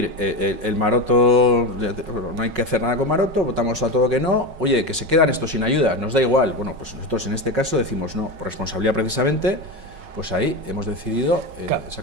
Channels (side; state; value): left; late; 5.4 ms